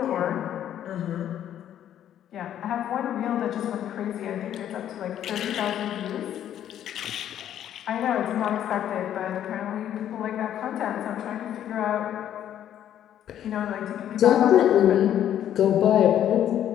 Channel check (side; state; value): right; quieter; 10.7 dB